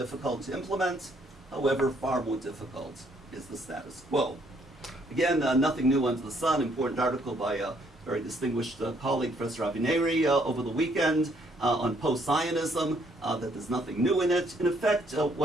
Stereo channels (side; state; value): both; normal; correlation 0.68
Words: to implement. However, far more difficult is the status quo. Again, nothing new under the sun. Important article by a very distinguished colleague, Professor Avineri, over the weekend on post-Zionism, that there's nothing new in it. In effect,